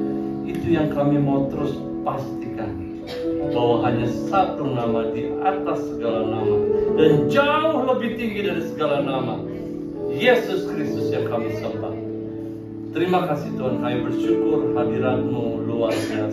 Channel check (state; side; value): identical; both; correlation 1.00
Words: Itu yang kami mau terus pastikan, bahwa hanya satu nama di atas segala nama dan jauh lebih tinggi dari segala nama, Yesus Kristus yang kami sembah. Terima kasih Tuhan, kami bersyukur hadirat-Mu luar